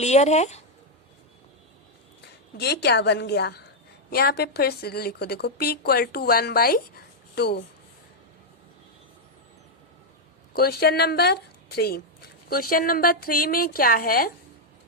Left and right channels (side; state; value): both; normal; correlation -0.01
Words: है। ये क्या बन गया, यहाँ पे फिर से लिखो, देखो p equal to 1/2। Question number 3। Question number 3 में क्या है,